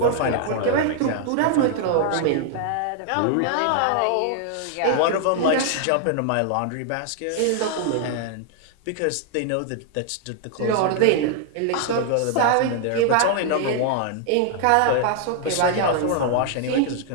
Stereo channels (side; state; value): both; different; correlation 0.00